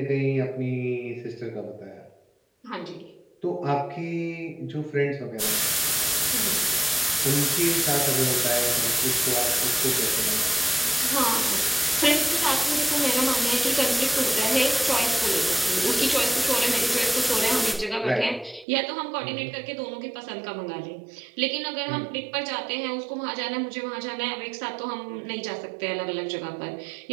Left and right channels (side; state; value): left; drops out; at 18.7 s